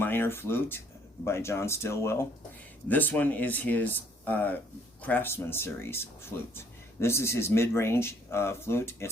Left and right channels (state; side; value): normal; both; correlation 0.62